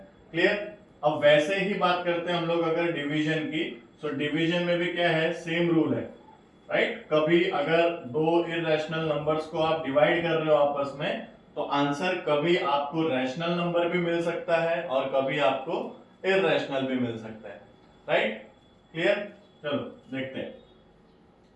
क्लियर। अब वैसे ही बात करते हैं हम लोग अगर डिवीजन की, तो डिवीजन में भी क्या है, सेम रूल है, राइट। कभी अगर दो इर्रेशनल नंबर्स को आप डिवाइड कर रहे हो आपस में तो आंसर कभी आपको रैशनल नंबर भी मिल सकता है और कभी आपको इर्रेशनल भी मिल सकता है, राइट। क्लियर। चलो देखते हैं।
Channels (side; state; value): both; identical; correlation 1.00